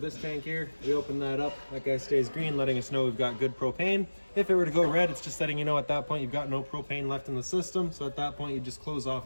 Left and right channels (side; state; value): both; inverted; correlation -1.00